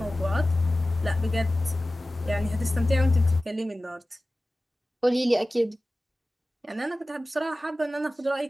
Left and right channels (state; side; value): normal; both; correlation 0.96